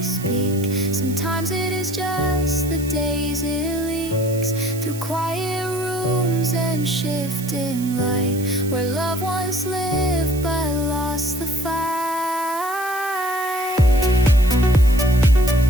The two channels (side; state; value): right; noise; hiss, 14 dB below the sound